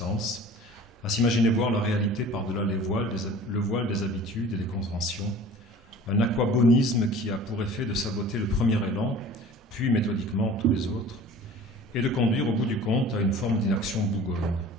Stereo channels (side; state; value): both; normal; correlation 0.43